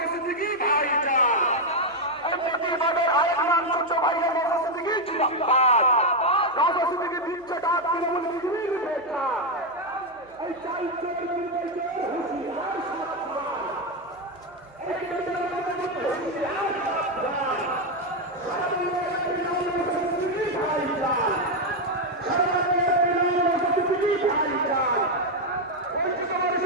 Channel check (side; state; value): right; noise; hum, 30 dB below the sound